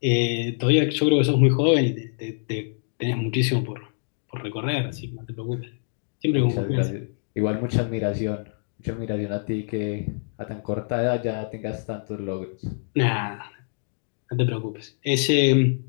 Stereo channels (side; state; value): right; silent; digital silence